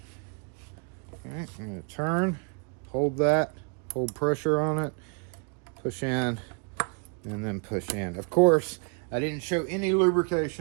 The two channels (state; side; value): quieter; left; 39.7 dB